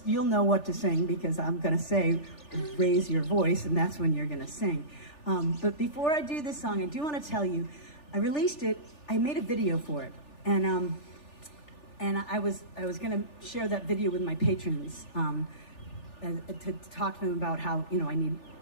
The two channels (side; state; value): right; late; 3.4 ms